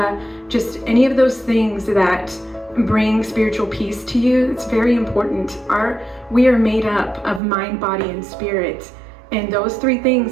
just any of those things that bring spiritual peace to you, it's very important. We are made up of mind, body, and spirit, and those three things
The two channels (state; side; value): drops out; left; at 7.4 s